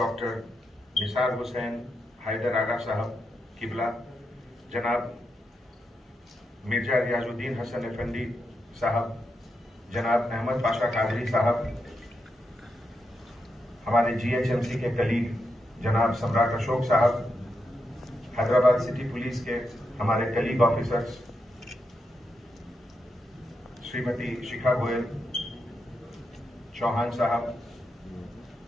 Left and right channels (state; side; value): normal; both; correlation 0.85